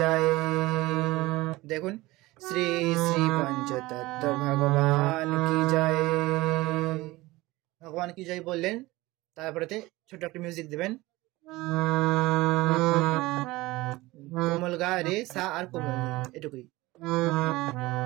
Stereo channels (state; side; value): quieter; left; 19.8 dB